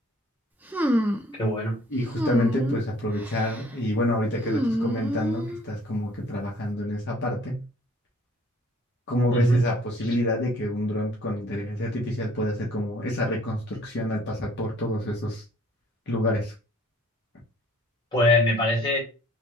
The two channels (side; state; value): both; normal; correlation 0.57